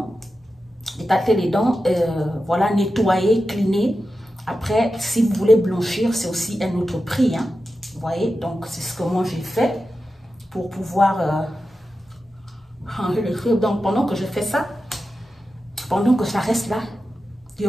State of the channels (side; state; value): both; normal; correlation 0.91